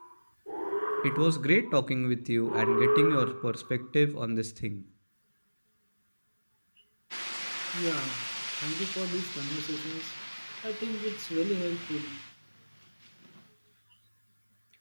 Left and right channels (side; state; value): both; inverted; correlation -1.00